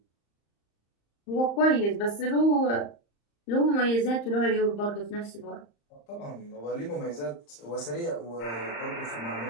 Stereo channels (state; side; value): late; right; 35 ms